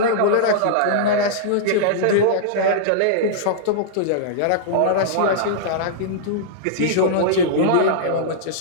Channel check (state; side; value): different; both; correlation -0.03